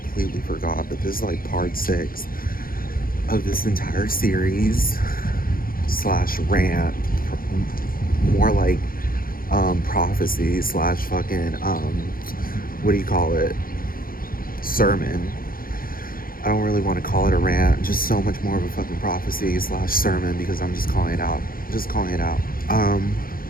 forgot, but this is like part six of this entire series slash rant, more like prophecy slash fucking what do you call it? Sermon. I don't really want to call it a rant, just so much more of a fucking prophecy slash sermon because I'm just calling it out. Just calling it out. Um,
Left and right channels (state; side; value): late; right; 0.42 ms